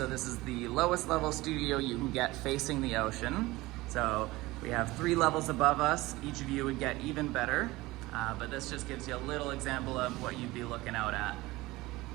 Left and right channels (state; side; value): quieter; left; 19.7 dB